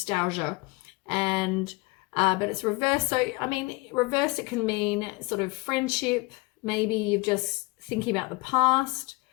And but it's reversed. So, I mean, reversed, it can mean sort of friendship. Maybe you're just thinking about the past.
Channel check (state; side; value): quieter; right; 24.5 dB